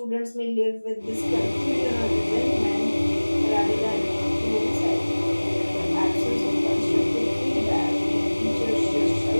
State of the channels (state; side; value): inverted; both; correlation -1.00